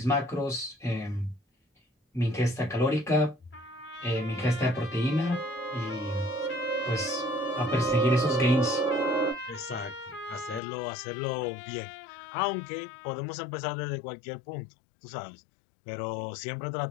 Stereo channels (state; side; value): drops out; right; at 10.6 s